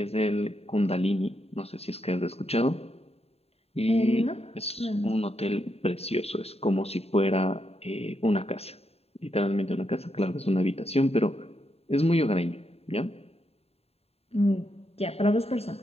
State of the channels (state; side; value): late; right; 0.29 ms